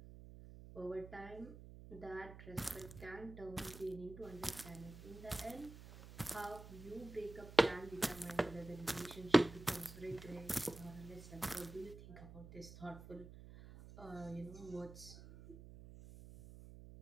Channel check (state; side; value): noise; right; hum, 14 dB below the sound